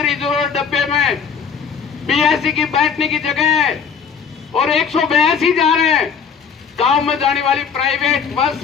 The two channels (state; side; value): quieter; right; 6.6 dB